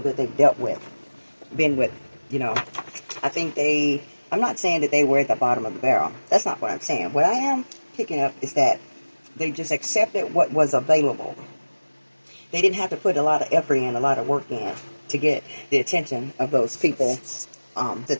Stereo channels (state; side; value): inverted; both; correlation -1.00